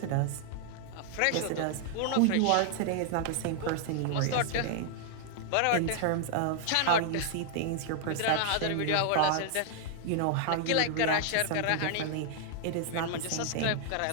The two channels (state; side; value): different; both; correlation 0.00